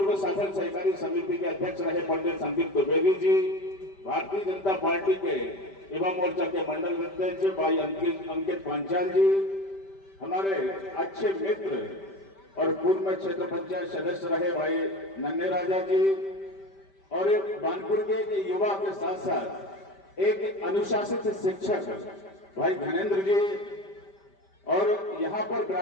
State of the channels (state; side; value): late; right; 5.1 ms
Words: शासन सहकारी समिति के अध्यक्ष रहे पंडित संदीप द्विवेदी जी, भारतीय जनता पार्टी के युवा मोर्चा के मंडल अध्यक्ष भाई अंकित पांचाल जी, हमारे अच्छे मित्र और पूर्व में क्षेत्र पंचायत सदस्य रहे भाई नन्हे राजा जी, और एक बानपुर के युवा के साथ साथ एक अनुशासित शिक्षक भाई धनेन्द्र जी, और यहाँ पर